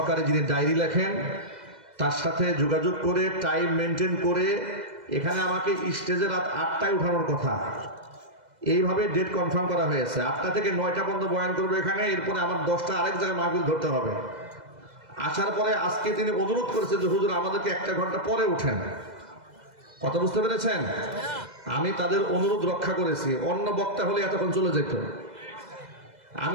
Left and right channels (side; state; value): left; late; 2.0 ms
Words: যিনি ডায়েরি লেখেন, তার সাথে যোগাযোগ করে টাইম মেনটেন করে এখানে আমাকে স্টেজে রাত 8টায় উঠানোর কথা। এইভাবে ডেট কনফার্ম করা হয়েছে। 8টা থেকে 9টা পর্যন্ত বয়ান করবে এখানে, এরপরে আমার 10টা আরেক জায়গায় মাহফিল ধরতে হবে। আসার পরে আজকে তিনি অনুরোধ করেছেন যে হুজুর আমাদেরকে 1 ঘন্টা পরে উঠেন। কথা বুঝতে পেরেছেন? আমি তাদের অনুরোধ রক্ষা করেছি। অন্য বক্তা হলে এতক্ষণ চলে যেত।